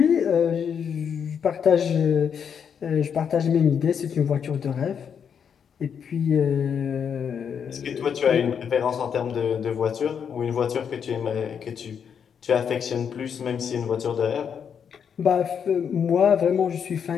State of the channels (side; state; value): right; quieter; 7.4 dB